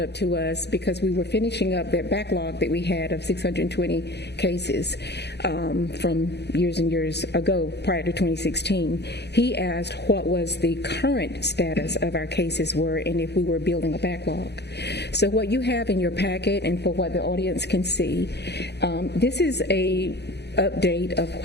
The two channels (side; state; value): right; late; 0.49 ms